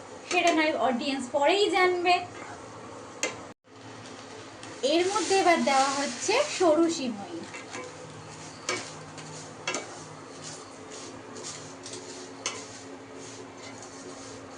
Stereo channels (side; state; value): both; identical; correlation 1.00